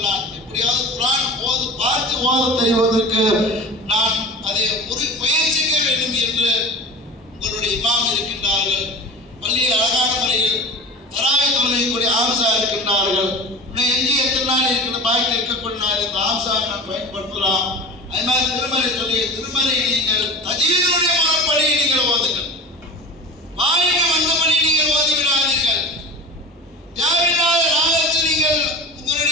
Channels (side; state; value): both; normal; correlation 0.35